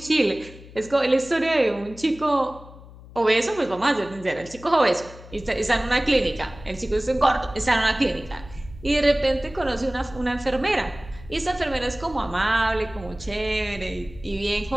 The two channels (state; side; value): noise; left; hum, 19 dB below the sound